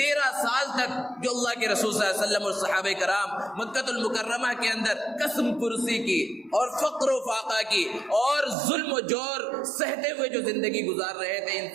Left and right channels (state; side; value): drops out; left; at 8.6 s